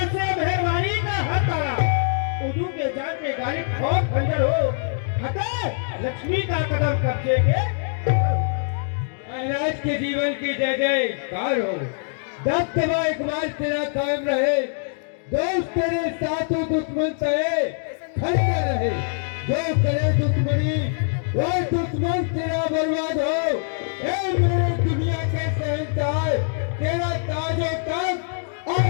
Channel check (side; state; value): right; silent; 63 dB below the other